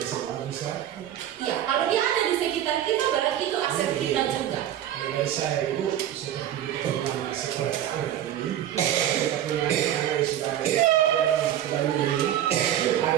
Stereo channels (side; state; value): left; quieter; 11.3 dB